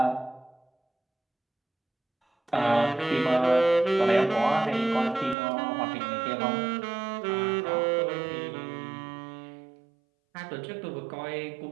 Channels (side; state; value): left; drops out; at 5.4 s